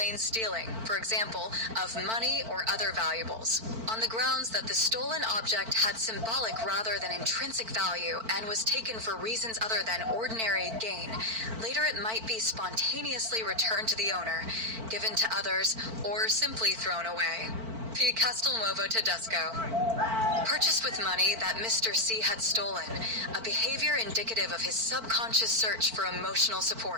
stealing, for example, of money or other valuables, on the grounds that the stolen object had symbolic rather than intrinsic value and was taken for reasons other than ordinary gain. Later it might be spontaneously returned to the owner, given to others, or simply thrown away. P. Castelnuovo-Tedesco. Purchased with money that Mr. C had stolen, a behavior indicative of his subconscious search for emotional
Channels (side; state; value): left; late; 4.5 ms